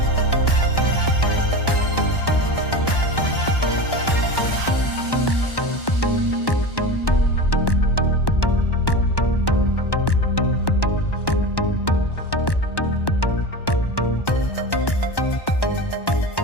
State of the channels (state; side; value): late; right; 1.1 ms